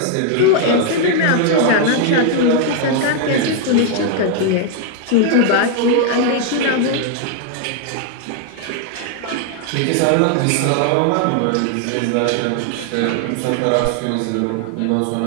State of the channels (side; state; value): both; different; correlation 0.00